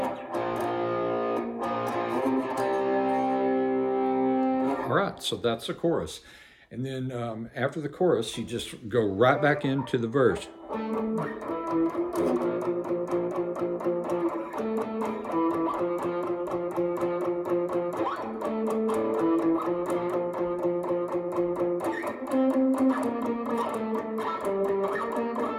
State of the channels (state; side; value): identical; both; correlation 1.00